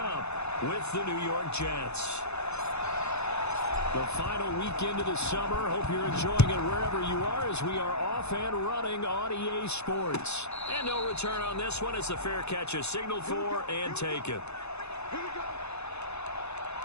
with the New York Jets. The final weekend of the summer. Hope you're enjoying it wherever you are as we are off and running on EA Sports. And no return on this one as the fair catch is signaled for and taken.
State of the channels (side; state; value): right; late; 0.81 ms